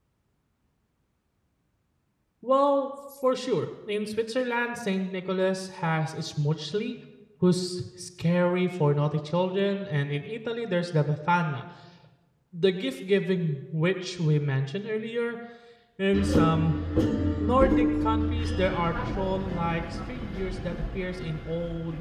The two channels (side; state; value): both; identical; correlation 1.00